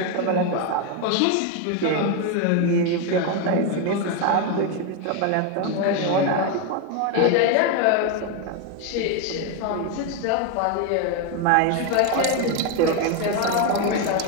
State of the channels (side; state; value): both; different; correlation 0.02